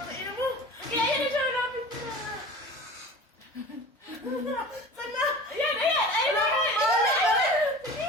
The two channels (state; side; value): normal; both; correlation 0.38